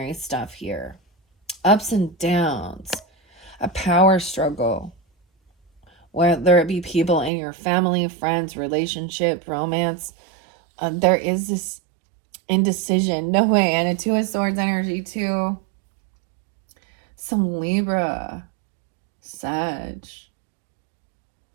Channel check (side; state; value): left; drops out; at 7.3 s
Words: stuff here. Ups and downs, a power struggle, whether it be people in your family, friends, relationship, romance. There is this indecision. No way. And a 2 of Swords energy too. Some Libra, Sag.